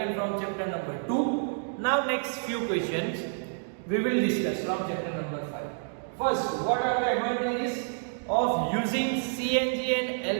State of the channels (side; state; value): left; silent; digital silence